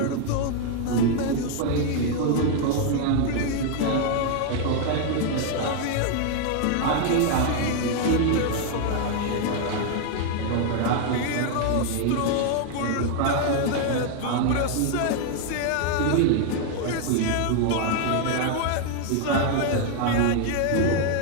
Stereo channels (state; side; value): different; both; correlation 0.00